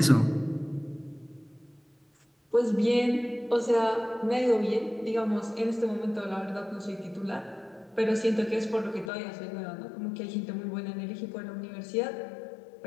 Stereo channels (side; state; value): right; drops out; at 9.1 s